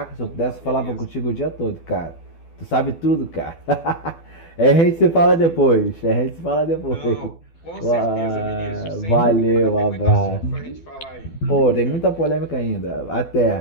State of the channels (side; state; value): right; late; 12 ms